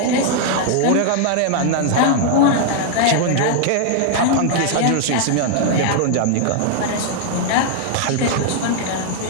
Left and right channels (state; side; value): different; both; correlation 0.00